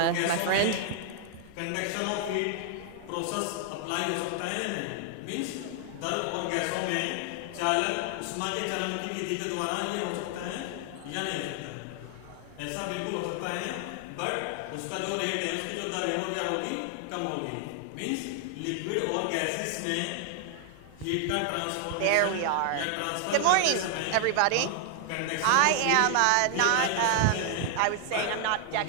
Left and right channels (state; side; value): different; both; correlation 0.00